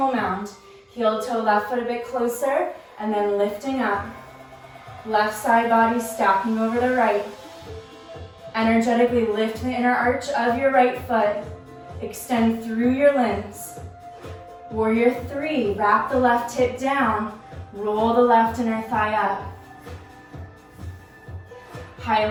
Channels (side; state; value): both; identical; correlation 1.00